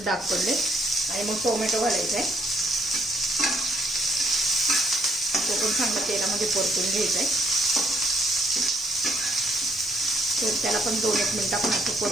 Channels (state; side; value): normal; both; correlation 0.67